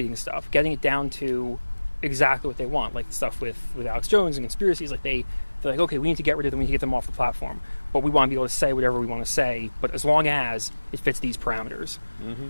stuff, getting it down to exactly what they want. Like stuff with Alex Jones and conspiracies. Like they're like, okay, we need to get rid of them. We need to get them off the platform. But we want to be able to say whatever we want to say. But as long as it fits these parameters,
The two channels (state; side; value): inverted; both; correlation -1.00